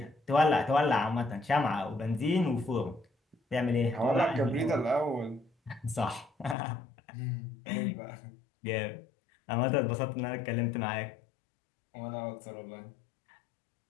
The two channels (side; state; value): right; drops out; at 6.6 s